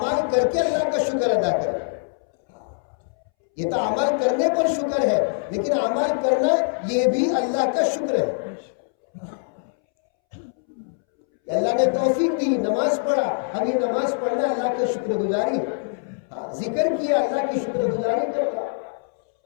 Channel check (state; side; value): silent; right; 63 dB below the other